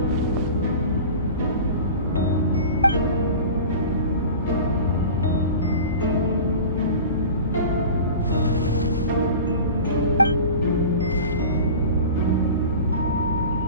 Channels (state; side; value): inverted; both; correlation -0.36